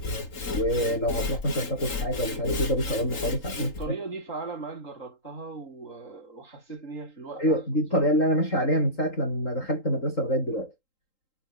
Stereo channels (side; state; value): right; late; 3.8 ms